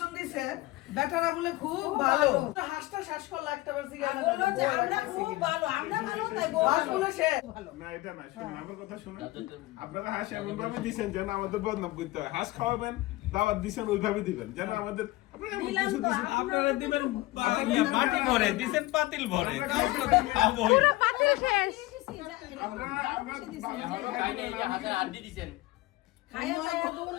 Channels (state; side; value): quieter; right; 19.4 dB